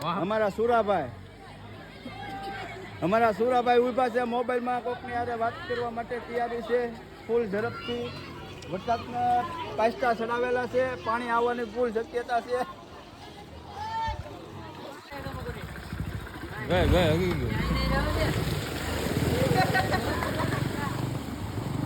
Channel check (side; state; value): both; identical; correlation 1.00